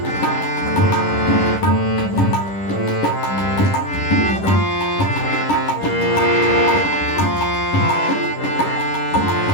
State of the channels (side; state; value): right; late; 11 ms